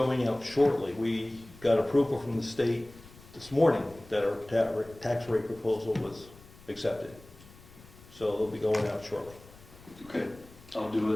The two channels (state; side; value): noise; left; rumble, 22 dB below the sound